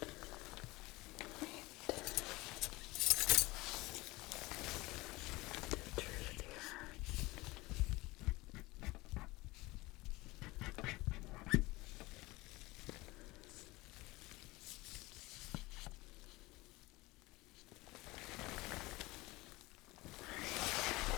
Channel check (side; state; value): right; quieter; 21.4 dB